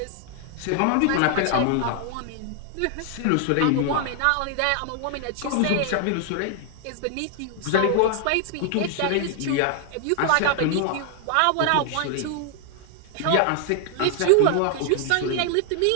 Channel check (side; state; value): both; different; correlation 0.00